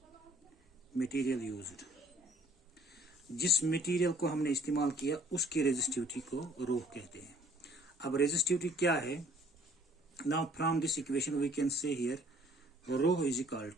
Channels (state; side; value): normal; both; correlation 0.58